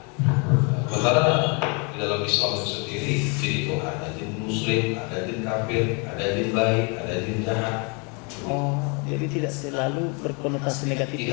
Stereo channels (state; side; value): quieter; right; 33.8 dB